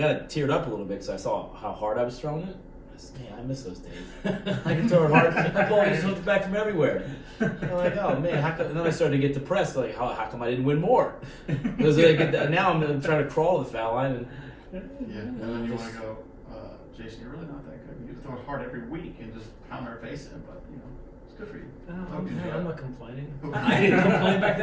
teared up a little bit because I saw how hard I was throwing it. I said, man, I miss those days. I can throw it hard. That ball just comes back from everywhere. I'm like, oh man, how come? And then I started to get depressed. Like, how come I didn't win more? Because now I'm trying to crawl the foul line. And then you want to go, Jason, you're really not that good. You throw it hard every week and just pound our face in, but it's good for you. I'm not complaining. I didn't complain back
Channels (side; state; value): both; identical; correlation 1.00